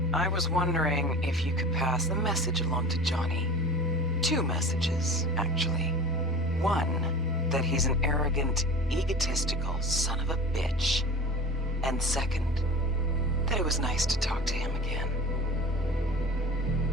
I was wondering if you could pass the message along to Johnny. 2 messages, actually. One, that he's an arrogant, egotistical son of a bitch. And second, that it was nice to talk to him again.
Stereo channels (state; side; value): normal; both; correlation 0.37